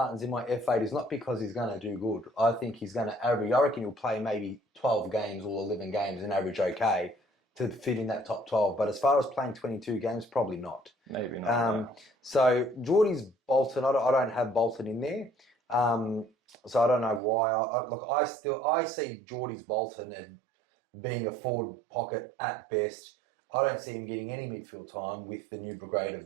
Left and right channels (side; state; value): left; drops out; at 17.2 s